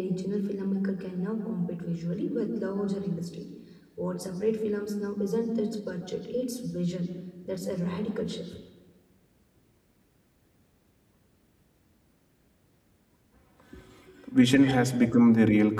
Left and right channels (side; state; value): both; identical; correlation 1.00